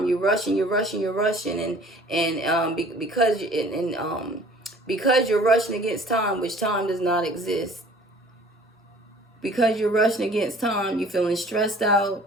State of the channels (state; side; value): normal; both; correlation 0.51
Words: You're rushing, and because you're rushing against time, which time does not exist. Because you're rushing against time, you're feeling stressed